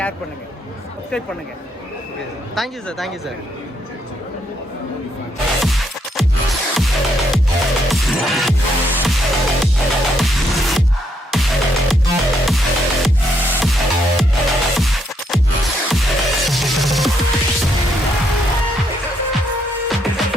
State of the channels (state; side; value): normal; both; correlation 0.75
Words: பண்ணுங்க, சப்ஸ்கிரைப் பண்ணுங்க. Thank you sir. Thank you sir.